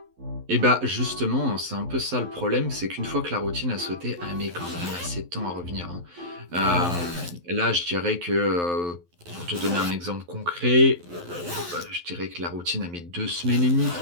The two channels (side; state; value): left; late; 11 ms